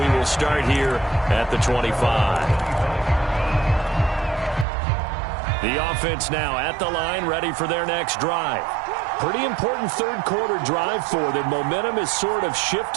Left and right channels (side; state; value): left; drops out; at 4.7 s